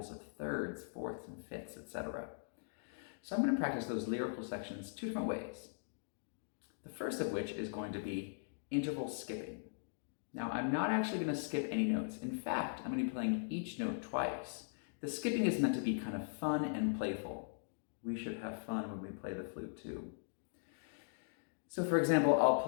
of thirds, fourths, and fifths, etc. So I'm going to practice those lyrical sections two different ways. The first of which is going to be interval skipping. Now, I'm not actually going to skip any notes. In fact, I'm going to be playing each note twice. The skipping is meant to be kind of fun and playful. We should have fun when we play the flute too. So for example, I'll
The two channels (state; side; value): silent; right; digital silence